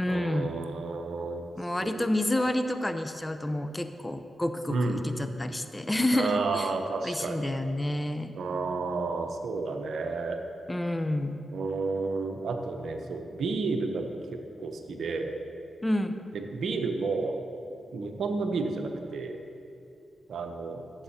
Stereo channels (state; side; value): normal; both; correlation 0.88